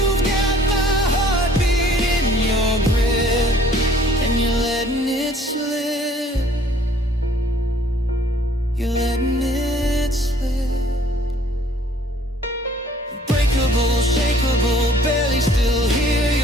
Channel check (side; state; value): both; normal; correlation 0.57